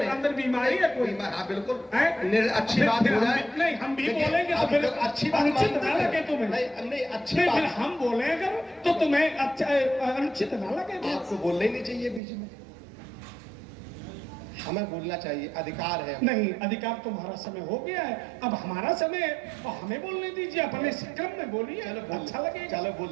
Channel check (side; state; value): left; drops out; at 12.2 s